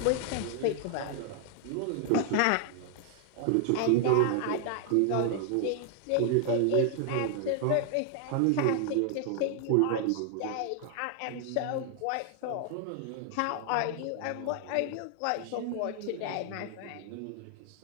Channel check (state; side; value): different; both; correlation 0.00